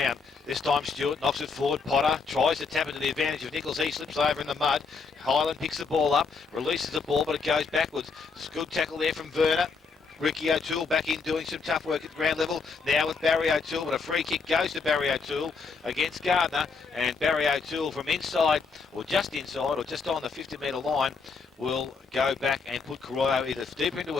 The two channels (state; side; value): quieter; right; 4.9 dB